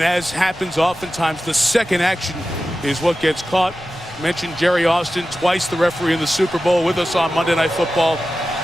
as happens oftentimes, the second action is what gets caught. Mentioned Jerry Austin, twice the referee in the Super Bowl, with us on Monday Night Football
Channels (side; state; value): left; noise; rumble, 25 dB below the sound